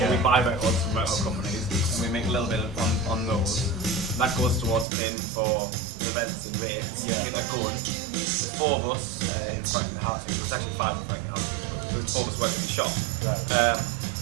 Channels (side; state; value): left; drops out; at 4.9 s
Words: or we buy records from record companies, and we make a little bit on those. That goes towards paying for events and rates. Get that going. There's 4 of us in Franklin Housing. There's actually 5 in Franklin Housing, but there's 4 of us working in the shop. Right.